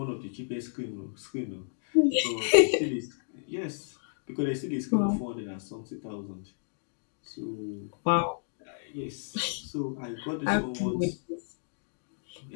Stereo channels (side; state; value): right; silent; digital silence